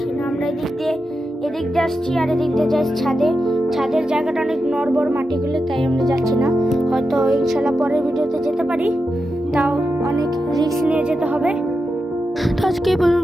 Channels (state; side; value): normal; both; correlation 0.89